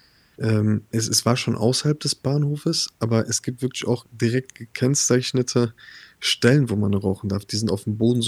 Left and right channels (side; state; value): both; identical; correlation 1.00